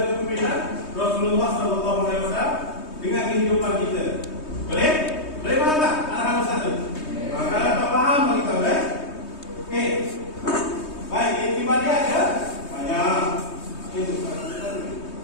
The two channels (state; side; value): late; right; 3.2 ms